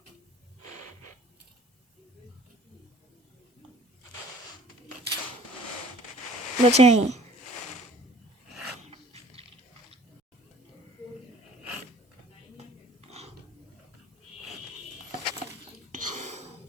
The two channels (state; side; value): normal; both; correlation 0.51